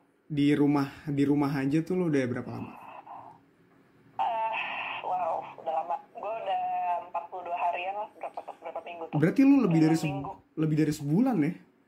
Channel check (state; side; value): identical; both; correlation 1.00